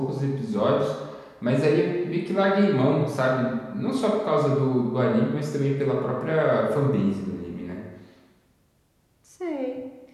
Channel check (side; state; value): both; identical; correlation 1.00